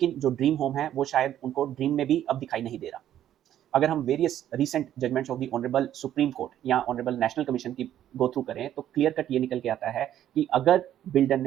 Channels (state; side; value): quieter; left; 11.4 dB